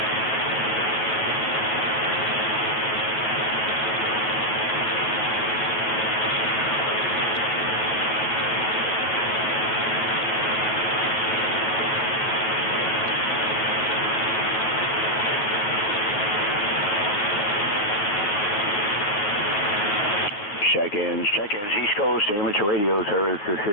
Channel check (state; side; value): late; right; 9.8 ms